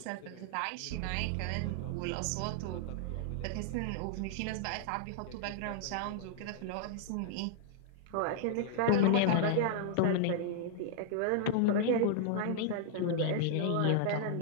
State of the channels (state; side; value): different; both; correlation -0.01